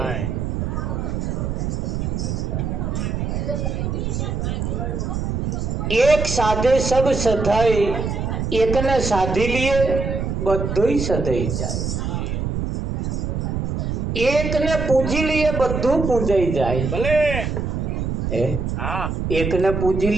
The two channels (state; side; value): noise; right; rumble, 2 dB below the sound